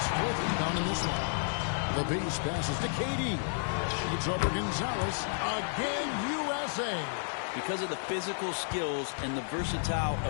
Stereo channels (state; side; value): silent; right; digital silence